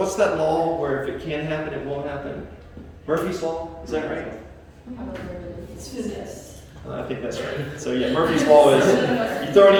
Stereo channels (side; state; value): both; identical; correlation 1.00